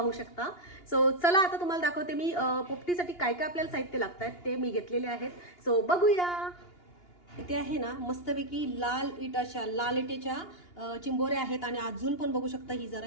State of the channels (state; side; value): late; right; 2.8 ms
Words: शकता। सो चला आता तुम्हाला दाखवते मी पोपटीसाठी काय काय आपल्याला साहित्य लागतात ते मी घेतलेले आहेत। सो बघूया। इथे आहे ना मस्तपैकी लाल इटेच्या चिंबोऱ्या आहेत आणि अजून पण बघू शकता ही